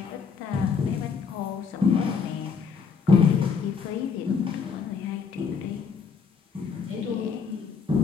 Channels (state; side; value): quieter; right; 5.8 dB